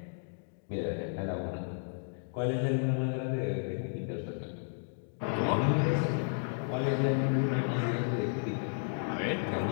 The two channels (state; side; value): silent; right; digital silence